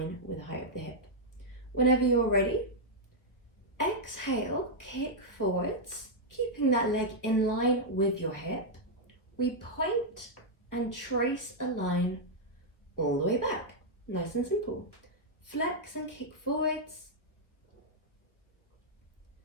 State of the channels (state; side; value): late; right; 1.3 ms